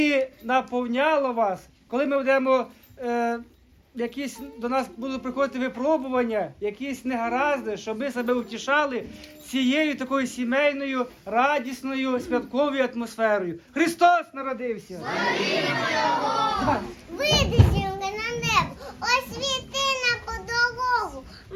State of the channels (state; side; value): identical; both; correlation 1.00